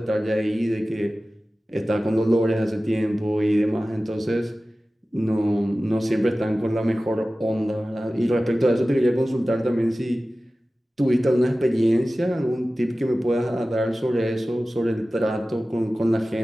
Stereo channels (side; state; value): both; normal; correlation 0.96